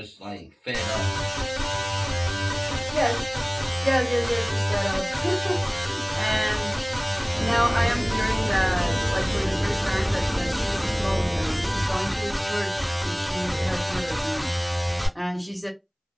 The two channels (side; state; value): both; identical; correlation 1.00